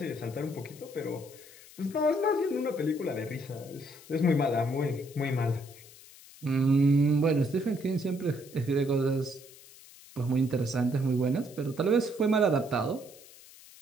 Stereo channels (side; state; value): left; noise; hiss, 21 dB below the sound